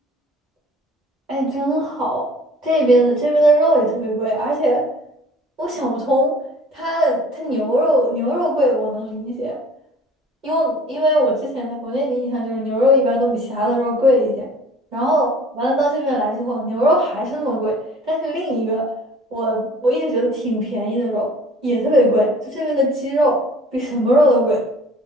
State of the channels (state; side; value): normal; both; correlation 0.49